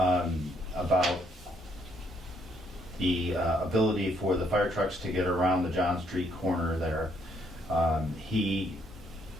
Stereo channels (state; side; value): normal; both; correlation 0.71